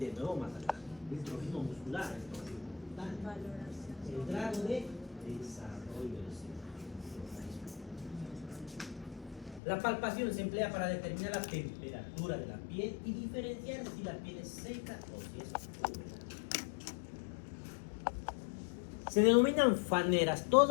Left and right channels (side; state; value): right; drops out; at 9.6 s